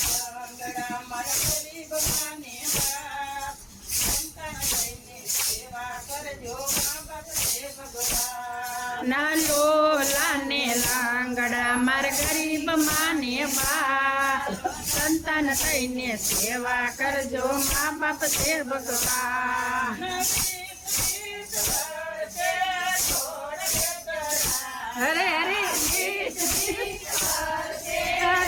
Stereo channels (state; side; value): identical; both; correlation 1.00